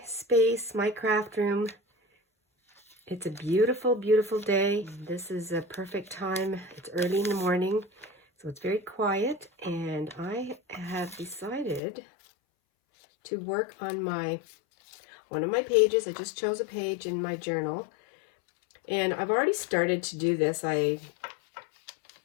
space, my craft room. It's a beautiful, beautiful day. This is a perfect time. It's early in the morning, so it's very quiet, and I have decided to work on one of my pages. I just chose a page in my journal, and I've already started to do this. I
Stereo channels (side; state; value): right; drops out; at 11.8 s